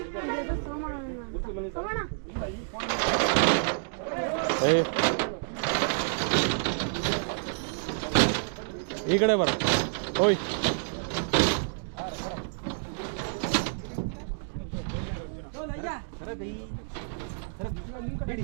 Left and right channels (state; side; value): silent; left; digital silence